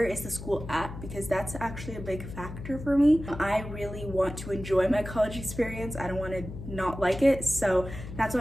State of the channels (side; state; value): left; noise; hum, 11 dB below the sound